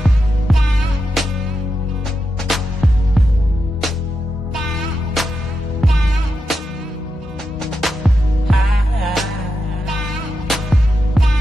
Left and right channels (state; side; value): normal; both; correlation 0.87